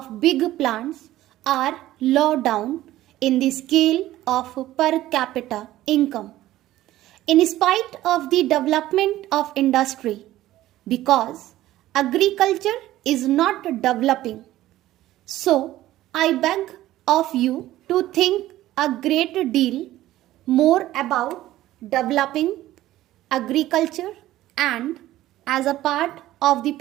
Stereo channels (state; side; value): quieter; left; 14.9 dB